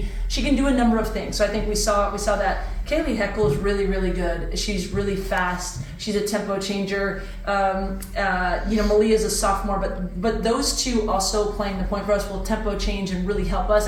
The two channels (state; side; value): identical; both; correlation 1.00